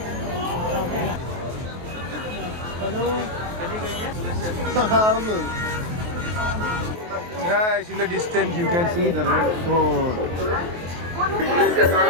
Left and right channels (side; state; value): left; late; 23 ms